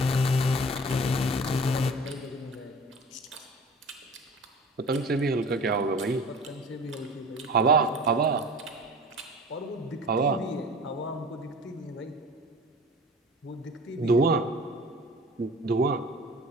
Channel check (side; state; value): both; normal; correlation 0.40